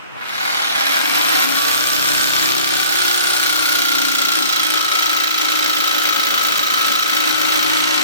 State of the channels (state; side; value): inverted; both; correlation -0.47